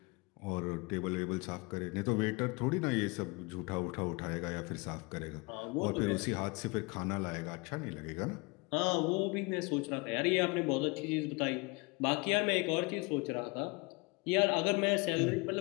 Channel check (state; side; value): quieter; right; 28.0 dB